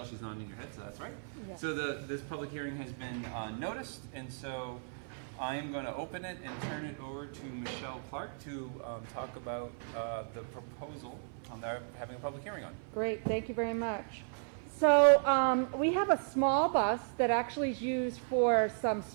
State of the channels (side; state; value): left; silent; 54 dB below the other